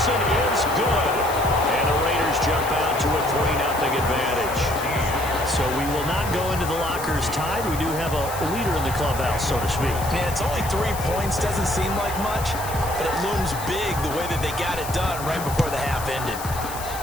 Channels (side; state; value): left; noise; hiss, 11 dB below the sound